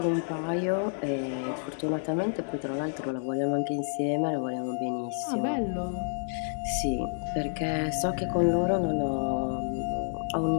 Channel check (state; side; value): silent; right; digital silence